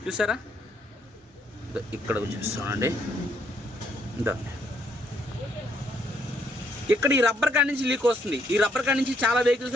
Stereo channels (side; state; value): both; normal; correlation 0.71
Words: చూసారా? ఇక్కడ చూస్తానండి, ఇక్కడ ఈ రబ్బర్ కాడి నుంచి లీక్ వస్తుంది. ఈ రబ్బర్ కాడి నుంచి చాలా